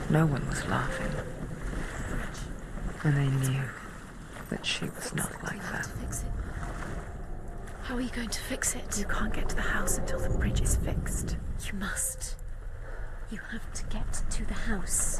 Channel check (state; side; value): identical; both; correlation 1.00